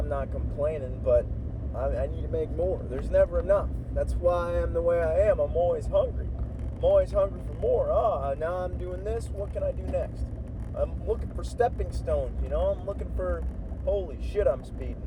not complaining, but I need to make more. There's never enough. That's why I am the way I am. I'm always hungry. I'm always hungry for more. Now I'm doing this. What can I do next? I'm looking for stepping stones, you know? I'm looking for, holy shit, I'm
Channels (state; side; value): identical; both; correlation 1.00